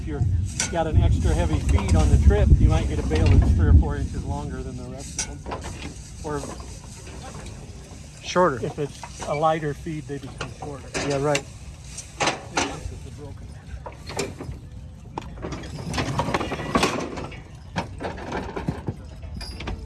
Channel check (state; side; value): identical; both; correlation 1.00